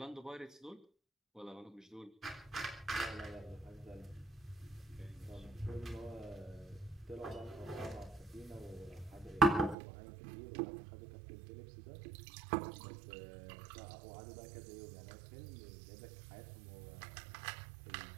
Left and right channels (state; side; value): drops out; left; at 9.8 s